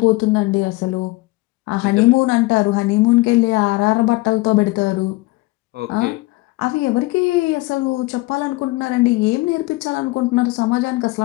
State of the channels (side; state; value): right; quieter; 21.4 dB